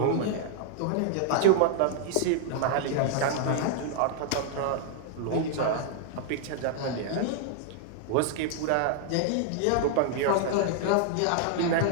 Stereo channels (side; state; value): both; different; correlation -0.01